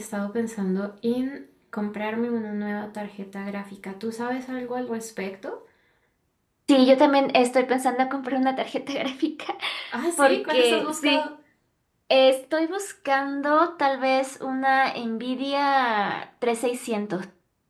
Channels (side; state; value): both; identical; correlation 1.00